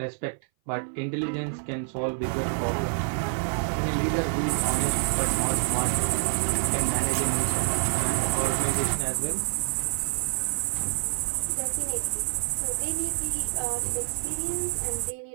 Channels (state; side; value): silent; left; 58 dB below the other